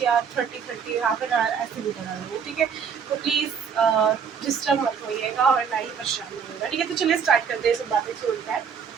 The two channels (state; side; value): quieter; left; 6.8 dB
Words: या 30 हाफ एन आवर ऐसे भी बना लूँगी। ठीक है, तो प्लीज़ डिस्टर्ब मत होइएगा और ना ही परेशान होइएगा। ठीक है, तो चलिए स्टार्ट करते हैं, सब बातें छोड़कर है।